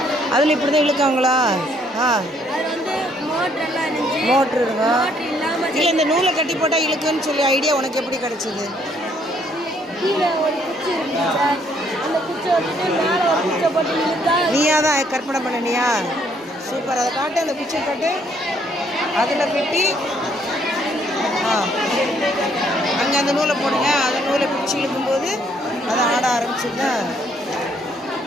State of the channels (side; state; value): both; normal; correlation 0.67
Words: அதில் இப்படி தான் இழுக்காங்களா? மோட்ரு இருக்கா? இல்லை, இந்த நூலை கட்டி போட்டால் இழுக்குன்னு சொல்லி ஐடியா உனக்கு எப்படி கிடைச்சிது? நீயா தான் கற்பனை பண்ணினியா? சூப்பர். அதை காட்டு, அந்த குச்சி காட்டு. அதில் வெட்டி அங்கே அந்த நூலை போடுங்க. அந்த நூலை பிடிச்சி இழுக்கும்போது அதை ஆட ஆரம்பிச்சுங்க.